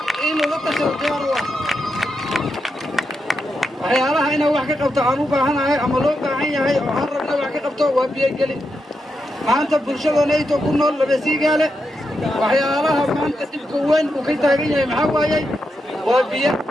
inuu la tashado diyaar u ah waxyaalaha inaan wax ka qabto aan u baahanahay ama loo baahan yahay oo aan rabna wax ka qabto waa biyogelin maanta bulshadanayto ku nool laba siigaale waxyaalaha maanta dhibka weyn uu ka taagan yahay maxaa waayey waa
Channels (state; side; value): normal; both; correlation 0.85